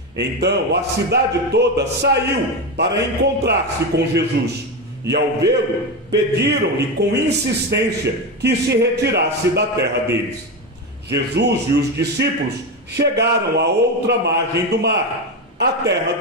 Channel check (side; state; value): both; normal; correlation 0.15